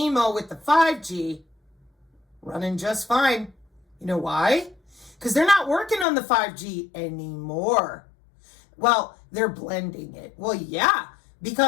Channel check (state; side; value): drops out; right; at 6.1 s